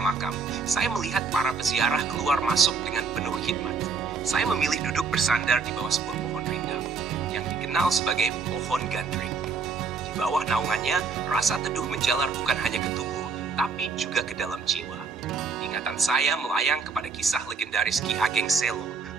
saya melihat para peziarah keluar masuk dengan penuh khidmat. Saya memilih duduk bersandar di bawah sebuah pohon rindang, yang dikenal sebagai pohon gandring. Di bawah naungannya, rasa teduh menjalar bukan hanya ke tubuh, tapi juga ke dalam jiwa. Ingatan saya melayang kepada kisah legendaris Ki Ageng Selo,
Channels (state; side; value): quieter; left; 4.9 dB